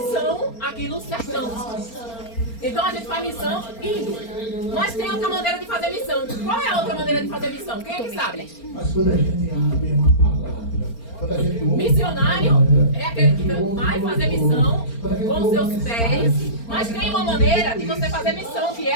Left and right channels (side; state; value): right; late; 4.4 ms